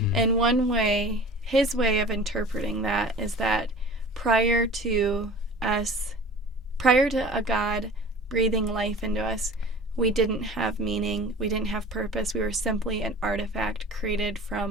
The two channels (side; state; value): both; normal; correlation 0.41